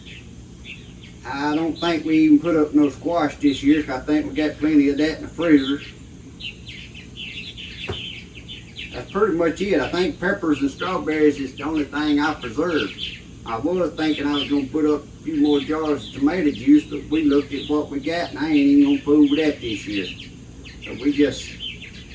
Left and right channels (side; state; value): both; identical; correlation 1.00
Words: I don't think we even put up no squash this year, because I think we got plenty of that in the freezer. That's pretty much it. I think peppers and strawberries is the only thing I preserved. I was thinking I was going to put up a few more jars of tomato juice, but we looked at what we got, and I ain't even going to fool with that this year. So we just